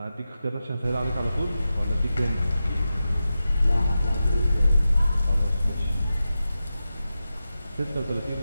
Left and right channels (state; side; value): inverted; both; correlation -0.91